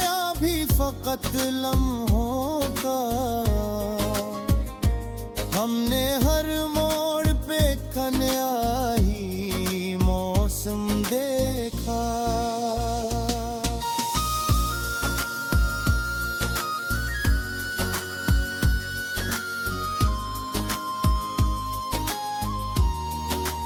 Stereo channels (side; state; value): both; identical; correlation 1.00